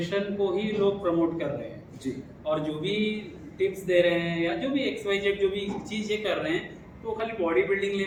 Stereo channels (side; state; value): both; identical; correlation 1.00